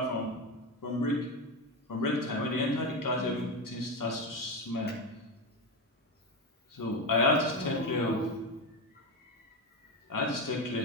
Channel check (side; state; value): both; normal; correlation 0.15